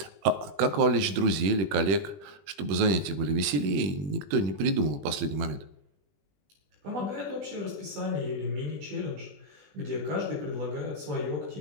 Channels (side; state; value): left; late; 21 ms